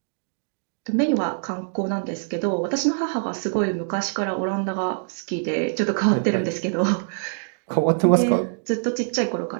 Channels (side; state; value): left; silent; digital silence